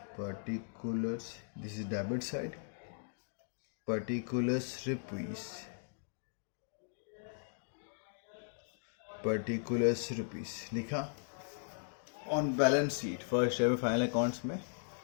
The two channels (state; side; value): silent; right; digital silence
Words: particulars, this is debit side, particulars rupees लिखा. On balance sheet first year final accounts में